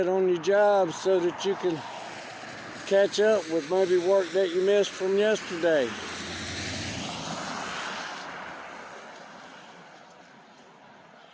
on your job so that you can catch up with maybe work that you missed from yesterday.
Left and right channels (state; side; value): identical; both; correlation 1.00